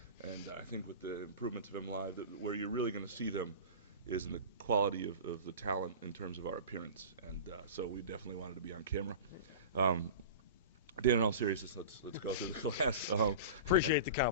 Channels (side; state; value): both; inverted; correlation -0.33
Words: and I think with the improvements of MLive, where you're really going to see them is in the quality of the talent in terms of our appearance, and so we definitely wanted to be on camera. Dan, in all seriousness, let's go through the class. Appreciate the